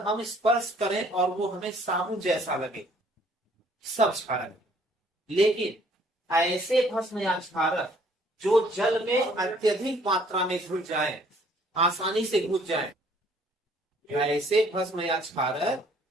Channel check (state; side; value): normal; both; correlation 0.60